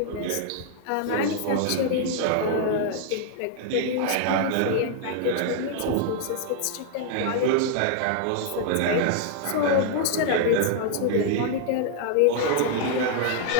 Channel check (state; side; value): different; both; correlation -0.01